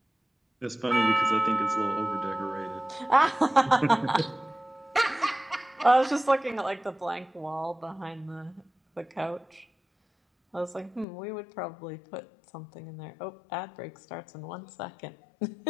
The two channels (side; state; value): right; drops out; at 11.1 s